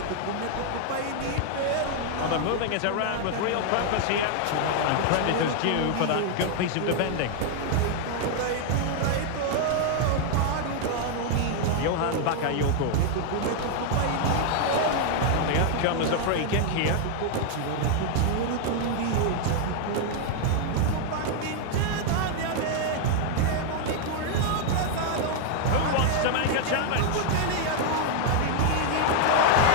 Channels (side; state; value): both; different; correlation 0.00